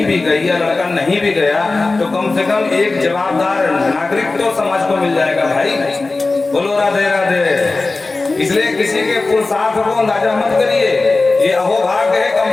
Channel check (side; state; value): right; quieter; 3.5 dB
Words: भी गई या लड़का नहीं भी गया, तो कम से कम एक जवाबदार नागरिक तो समाज को मिल जाएगा भाई। बोलो राधे राधे। इसलिए किसी के पुरुषार्थ को अंदाजा मत करिए, ये अहोभाग्य है।